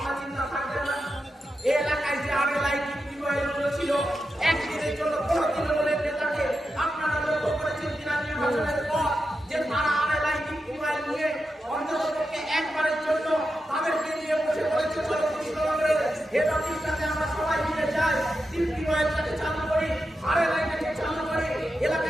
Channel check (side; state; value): both; normal; correlation 0.88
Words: চিন্তা থাকবে না? এই এলাকায় যে টিউবওয়েলগুলো ছিল, একদিনের জন্য কোনো তৃণমূলের নেতাকে আপনারা লক্ষ্য করেছেন কিনা নির্বাচনের পর যে তারা টিউবওয়েল নিয়ে অন্ততপক্ষে একবারের জন্য তাদেরকে নিয়ে বসে পড়েছে কৃষ্ণনগরের হেড অফিসটাতে আমরা সবাই মিলে যাই, টিউবওয়েলটাকে চালু করি, আরএলআইটাকে চালু করি,